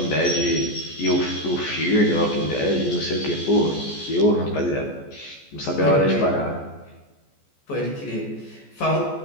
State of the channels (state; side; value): late; right; 14 ms